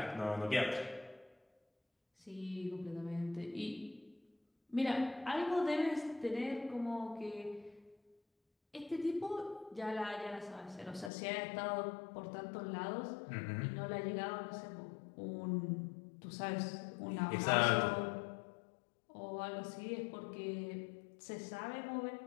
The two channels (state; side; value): drops out; right; at 11.1 s